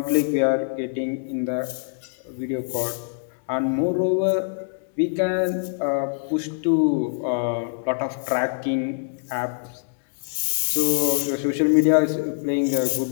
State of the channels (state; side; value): silent; right; 62 dB below the other